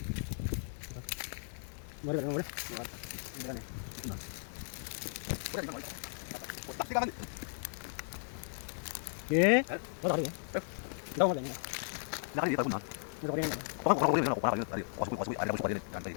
Boleh boleh boleh. Boleh nih. Boleh boleh. Pasti kan. Eh? Boleh boleh. Đâu boleh nih. Nakali dito na. Boleh boleh. Ko ko ko na ko para yun. Wasu ada musu padin kan tadi.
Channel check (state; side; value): silent; right; digital silence